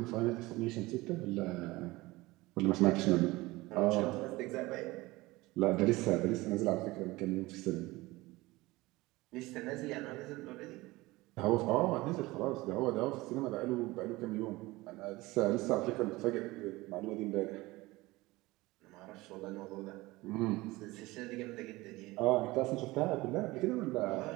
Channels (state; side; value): quieter; left; 20.4 dB